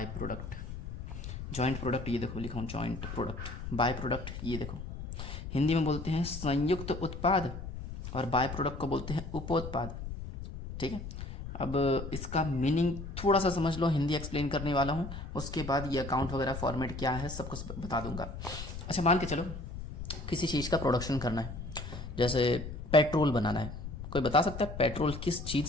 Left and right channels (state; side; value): noise; left; rumble, 8 dB below the sound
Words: product. Joint product ये देखो लिखा हूँ, जॉइंट प्रोडक्ट बाय प्रोडक्ट ये देखो। हिंदी में बोलते हैं संयुक्त उत्पाद और बाय प्रोडक्ट को बोलते हैं उपोत्पाद। ठीक है, अब इसका मीनिंग थोड़ा सा समझ लो, हिंदी एक्सप्लेन करने वाला हूँ, उसके बाद ये अकाउंट वगैरह फॉर्मेट क्या है सब कुछ बता दूंगा। अच्छा, मान के चलो किसी चीज़ का प्रोडक्शन करना है, जैसे पेट्रोल बनाना है। कोई बता सकता है पेट्रोल किस चीज़